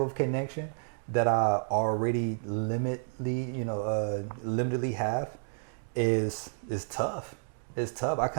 connection that I already limitedly have is tough. It's tough. I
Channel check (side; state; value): left; silent; 57 dB below the other